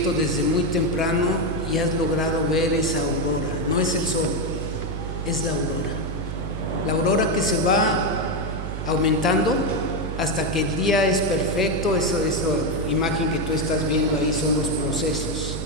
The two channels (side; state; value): right; noise; hum, 5 dB below the sound